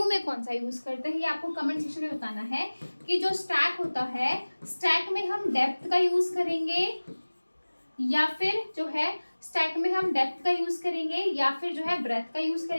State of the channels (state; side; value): inverted; both; correlation -1.00